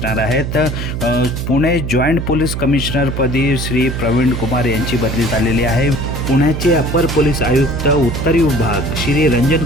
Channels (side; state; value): right; noise; hum, 4 dB below the sound